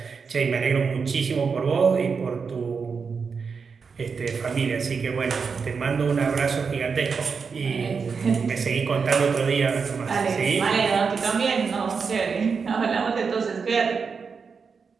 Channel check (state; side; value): quieter; left; 5.5 dB